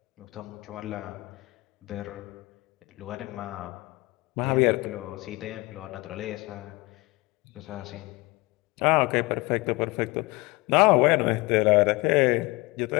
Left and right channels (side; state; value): right; quieter; 23.6 dB